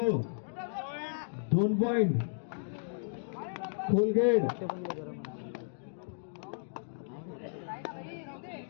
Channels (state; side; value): silent; right; digital silence